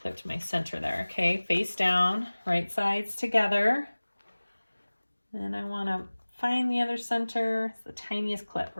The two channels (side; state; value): both; inverted; correlation -1.00